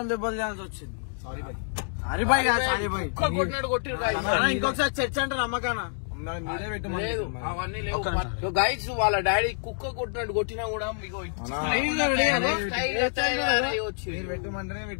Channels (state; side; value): silent; right; digital silence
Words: దెబ్బలు తినాల్సి వచ్చింది. సారీ బాయ్ కొట్టినాడు కొట్టిరు. ఇంకొకసారి చర్చ అంటే నమ్మకానా లేదు అవన్నీ లేవు. గైస్ వాళ్ళ డాడీ కుక్క కొట్టినట్టు కొట్టినా కూడా మీకు